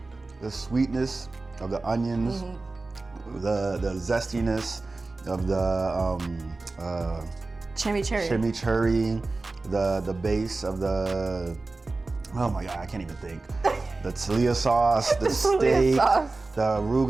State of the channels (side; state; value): left; quieter; 3.4 dB